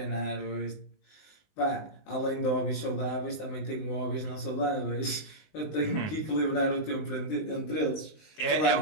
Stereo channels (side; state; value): right; late; 20 ms